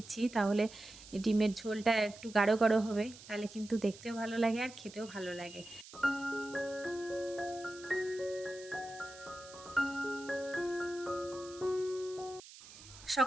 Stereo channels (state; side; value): noise; right; hiss, 18 dB below the sound